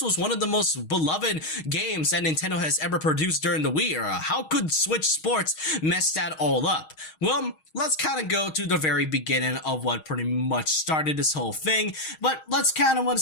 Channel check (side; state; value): right; late; 6.4 ms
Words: was one of the most beloved games that Nintendo has ever produced during the Wii era. How could Switch Sports mess that all up? Well, let's kind of go to the very beginning of what pretty much started this whole thing, but let's kind of want